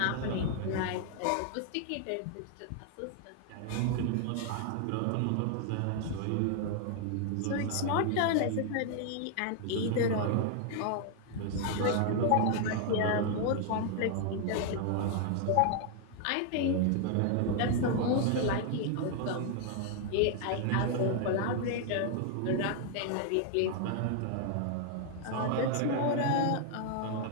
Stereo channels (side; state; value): both; different; correlation 0.00